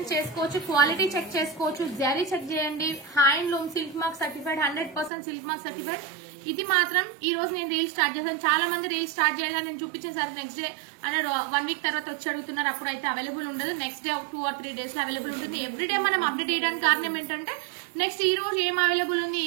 చేసుకోవచ్చు, క్వాలిటీ చెక్ చేసుకోవచ్చు, జరీ చెక్ చేయండి. Handloom silk mark certified, 100% silk mark certified. ఇది మాత్రం ఈ రోజు నేను రీల్ స్టార్ట్ చేశాను. చాలా మంది రీల్ స్టార్ట్ చేయాలని నేను చూపించిన సార్ నెక్స్ట్ డే అంటే 1 వీక్ తర్వాత వచ్చి అడుగుతున్నారు, అప్పుడు అయితే అవైలబుల్ ఉండదు. నెక్స్ట్ డే 2 or 3 డేస్ లో అవైలబుల్ ఉంటుంది. ఎవ్రీడే మనం అప్డేట్ చేయడానికి కారణం ఏంటంటే నెక్స్ట్ ఈ రోజు ఏం అవైలబుల్ ఉంది,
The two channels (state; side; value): drops out; left; at 5.1 s